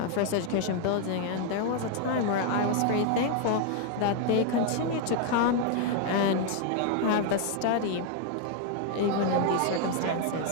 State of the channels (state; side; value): different; both; correlation 0.00